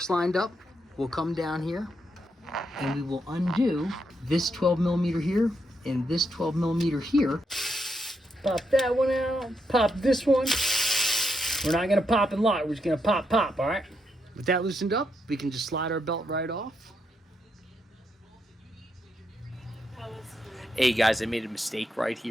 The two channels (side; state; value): both; normal; correlation 0.81